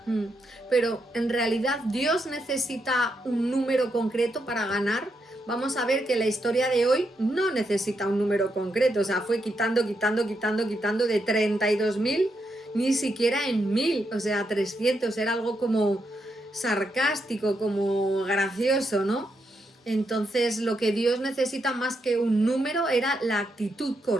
Pero en realidad Dios necesita un número concreto para ganar, vamos a ver que la historia de hoy no necesita un número concreto, o sea, fue quitando de 32.000, ni siquiera en 1.000, o sea, 300, era algo como sarcástico, como gracioso, ¿no? Entonces lo que Dios necesita más que un número era la actitud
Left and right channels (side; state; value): both; normal; correlation 0.81